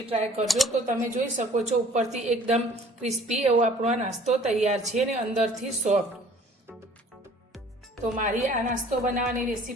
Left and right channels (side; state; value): both; normal; correlation 0.52